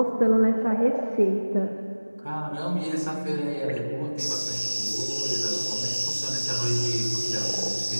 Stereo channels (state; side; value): inverted; both; correlation -1.00